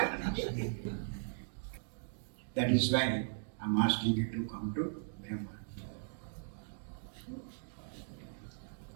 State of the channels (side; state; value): left; silent; digital silence